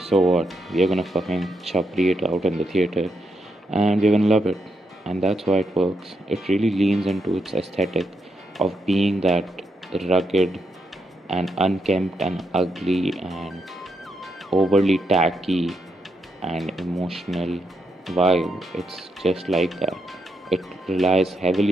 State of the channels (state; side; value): normal; both; correlation 0.81